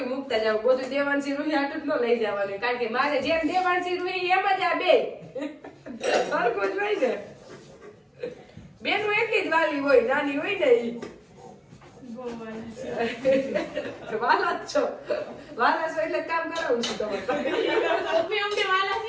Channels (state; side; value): identical; both; correlation 1.00